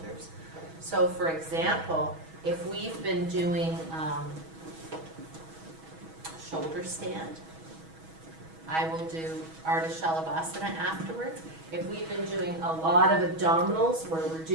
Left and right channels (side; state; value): left; late; 6.2 ms